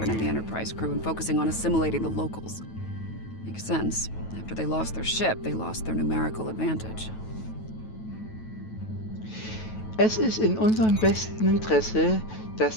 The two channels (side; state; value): right; late; 9.2 ms